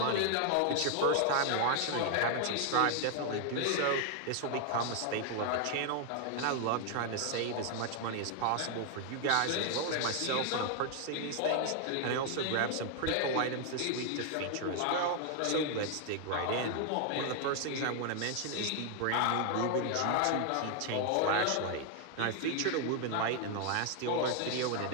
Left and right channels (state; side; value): different; both; correlation 0.00